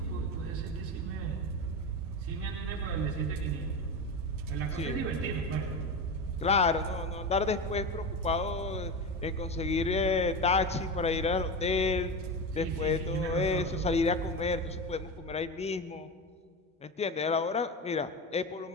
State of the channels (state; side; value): normal; both; correlation 0.21